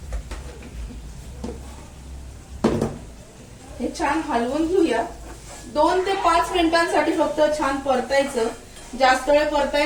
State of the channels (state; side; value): identical; both; correlation 1.00